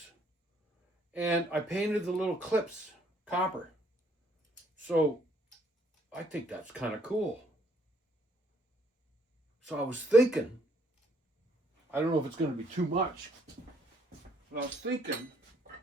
And I painted the little clips copper. So I think that's kind of cool. So I was thinking, I don't know if it's going to be too much, but I was thinking,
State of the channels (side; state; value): both; normal; correlation 0.67